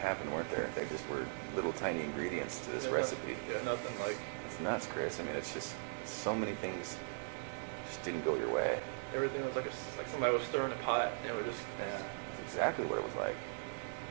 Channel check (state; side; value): silent; left; 52 dB below the other